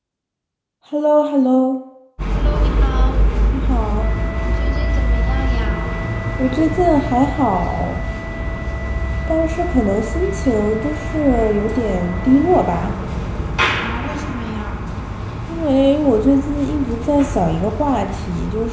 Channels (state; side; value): identical; both; correlation 1.00